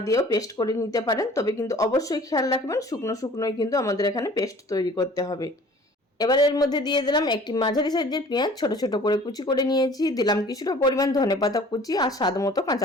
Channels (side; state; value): both; normal; correlation 0.49